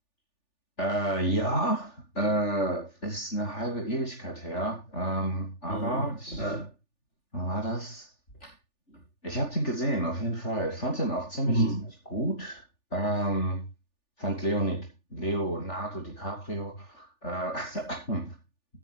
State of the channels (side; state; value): right; late; 3.4 ms